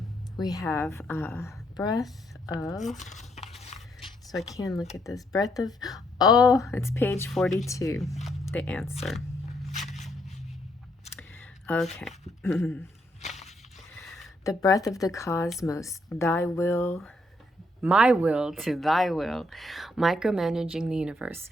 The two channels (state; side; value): normal; both; correlation 0.73